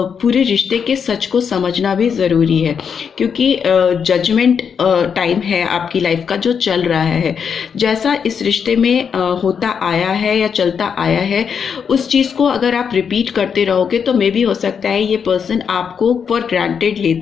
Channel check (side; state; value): right; quieter; 6.8 dB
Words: पूरे रिश्ते के सच को समझना भी ज़रूरी है, क्योंकि जजमेंट टाइम है आपकी लाइफ का जो चल रहा है। जैसा इस रिश्ते में होता आया है या चलता आया है, उस चीज़ को अगर आप रिपीट करते रहोगे तो मे भी हो सकता है ये पर्सन आपको फॉर ग्रांटेड